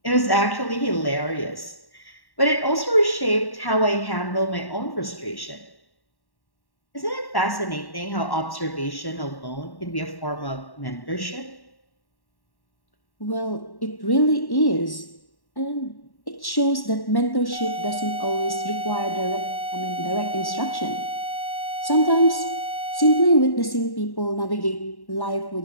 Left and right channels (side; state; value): right; late; 1.1 ms